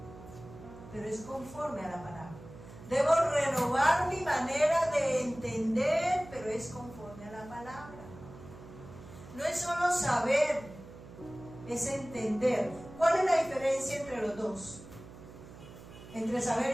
Pero es conforme a la palabra. Debo renovar mi manera de entender, pero es conforme a la palabra. No es solo saber, es entender. ¿Cuál es la diferencia entre los dos? Entre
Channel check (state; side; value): noise; right; hum, 17 dB below the sound